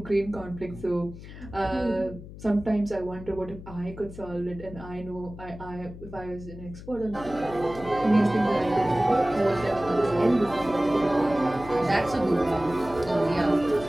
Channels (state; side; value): noise; left; hum, 14 dB below the sound